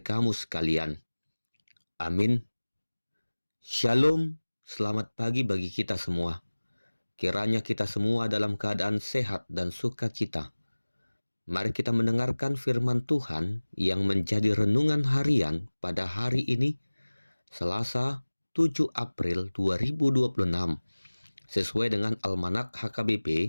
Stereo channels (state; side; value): inverted; both; correlation -1.00